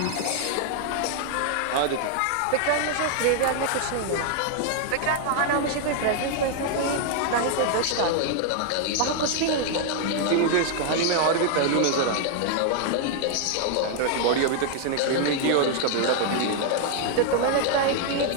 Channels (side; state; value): both; different; correlation 0.00